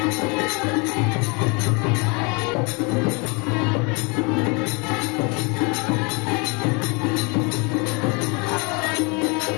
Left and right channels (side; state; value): right; quieter; 30.7 dB